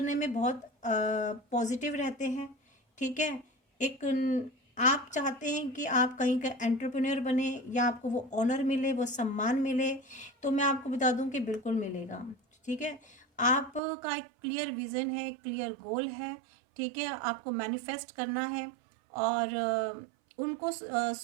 में बहुत पॉजिटिव रहते हैं। ठीक है, एक आप चाहते हैं कि आप कहीं का एंटरप्रेन्योर बने, या आपको वो ऑनर मिले, वो सम्मान मिले, तो मैं आपको बता दूं कि बिल्कुल मिलेगा। ठीक है, आपका एक क्लियर विज़न है, क्लियर गोल है। ठीक है, आपको मैनिफेस्ट करना है, और उनको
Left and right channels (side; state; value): left; drops out; at 13.8 s